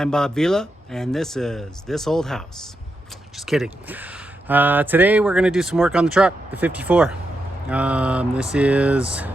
Bob Vila and this is This Old House. Just kidding. Today we're going to do some work on the truck, the 54. This is,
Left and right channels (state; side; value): normal; both; correlation 0.85